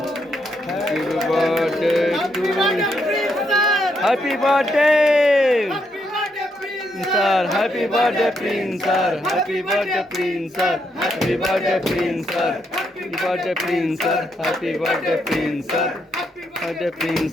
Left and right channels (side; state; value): both; normal; correlation 0.78